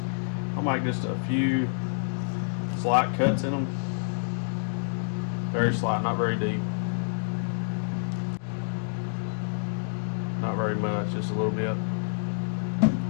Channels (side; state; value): right; silent; digital silence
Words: I'll make just a few slight cuts in them. Very slight, not very deep. Not very much, just a little bit.